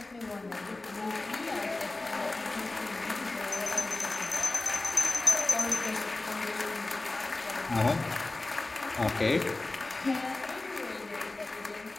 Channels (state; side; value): quieter; right; 3.1 dB